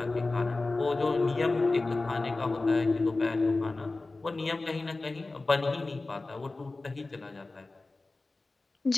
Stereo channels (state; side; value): quieter; right; 3.3 dB